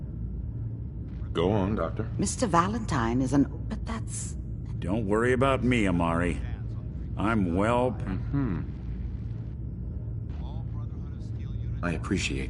Go on, Doctor. Mr. Valentine is an... But that's... Don't worry about me, Amari. I'm well... I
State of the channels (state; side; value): identical; both; correlation 1.00